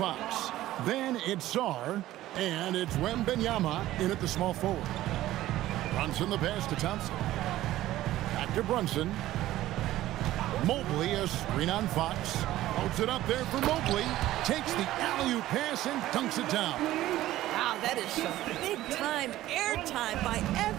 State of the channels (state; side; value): quieter; left; 15.0 dB